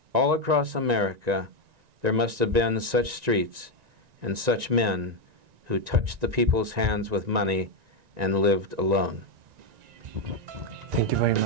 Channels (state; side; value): late; left; 1.9 ms